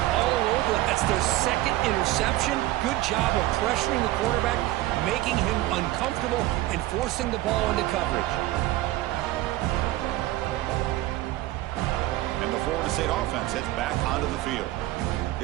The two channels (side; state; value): left; quieter; 16.5 dB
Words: all over it. That's their 2nd interception. Good job of pressuring the quarterback, making him uncomfortable, and forcing the ball into coverage. And the Florida State offense heads back onto the field.